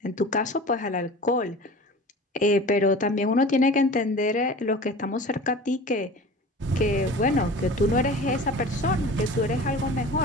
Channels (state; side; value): normal; both; correlation 0.38